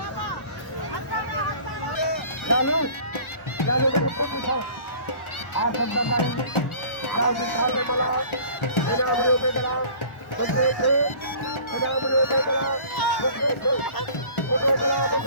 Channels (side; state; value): right; late; 1.0 ms